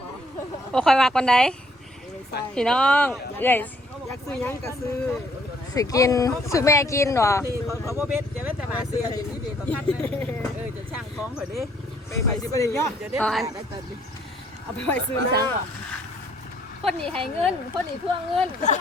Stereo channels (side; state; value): both; normal; correlation 0.65